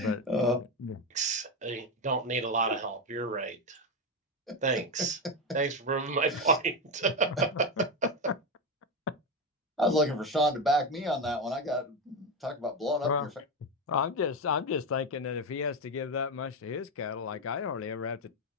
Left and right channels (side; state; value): both; normal; correlation 0.13